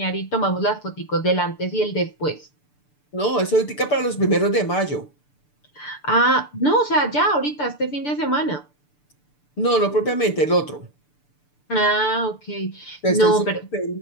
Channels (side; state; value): right; late; 6.8 ms